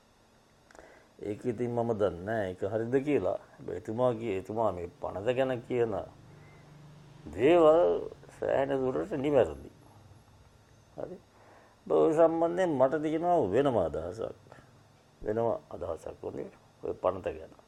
ඒක ඉතින් මම දන්නේ නැහැ ඒක හරිද කියලා. හැබැයි එතුමා මේ පනත ගැන කියන දේවල් සෑහෙන දුරට නිවැරදි. හරි. ඔය සම්බන්ධයෙන් මට තියෙනවා වෙනම අදහසක් වුණේ ඔය පනත ගැන.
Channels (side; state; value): both; identical; correlation 1.00